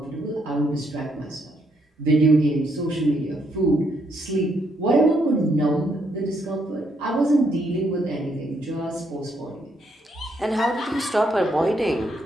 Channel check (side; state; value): both; normal; correlation 0.74